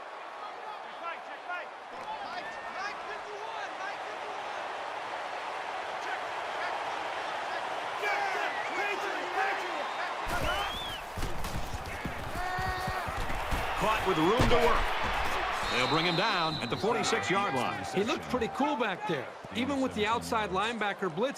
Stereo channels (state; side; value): identical; both; correlation 1.00